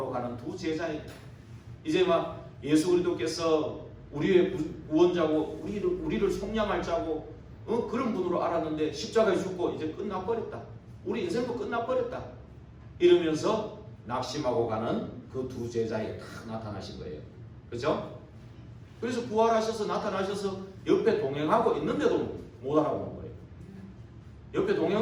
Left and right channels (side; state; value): both; identical; correlation 1.00